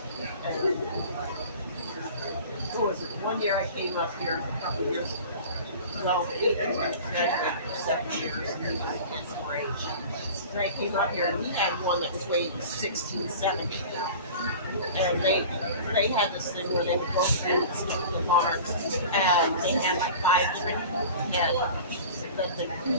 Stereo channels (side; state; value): both; inverted; correlation -0.39